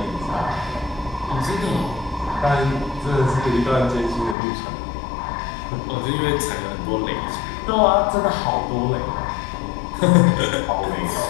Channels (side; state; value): right; drops out; at 4.4 s